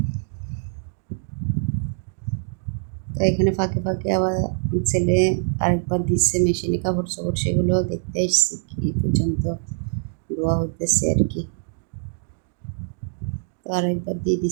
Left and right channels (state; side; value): silent; left; digital silence